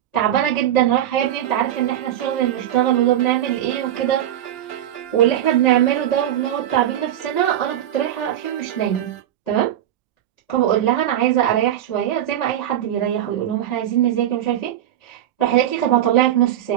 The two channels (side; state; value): left; quieter; 11.6 dB